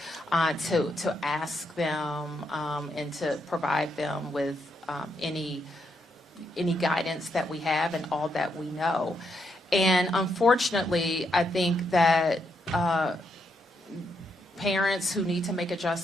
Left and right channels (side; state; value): both; normal; correlation 0.79